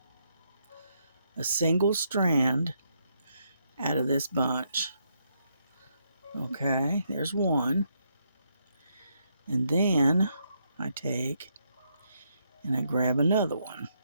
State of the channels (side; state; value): both; inverted; correlation -0.77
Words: a single strand out of this bunch. Okay, there's one. And then I take and I grab another one.